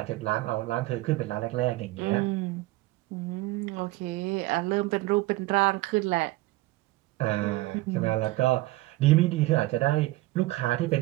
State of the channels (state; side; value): quieter; left; 18.7 dB